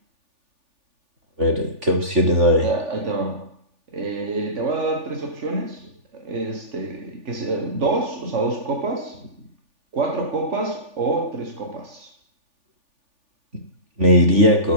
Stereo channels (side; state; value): left; late; 3.4 ms